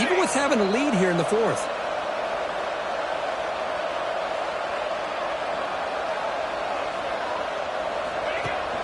with having a lead here in the fourth.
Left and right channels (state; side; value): identical; both; correlation 1.00